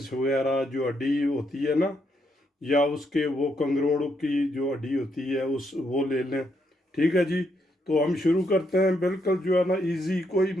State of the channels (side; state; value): both; normal; correlation 0.77